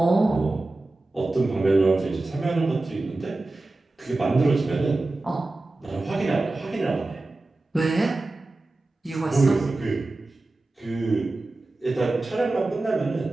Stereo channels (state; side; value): quieter; left; 3.0 dB